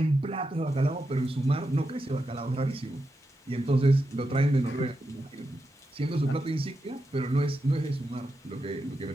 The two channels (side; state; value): both; normal; correlation 0.87